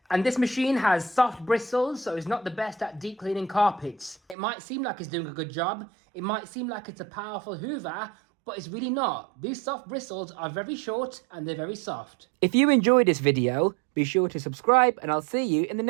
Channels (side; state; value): left; drops out; at 4.4 s